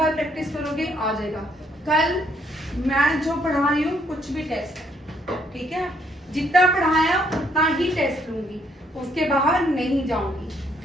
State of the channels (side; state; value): both; normal; correlation 0.69